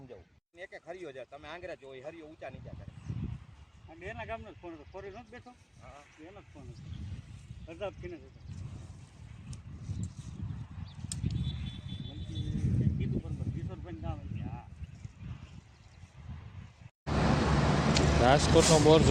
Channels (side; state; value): both; identical; correlation 1.00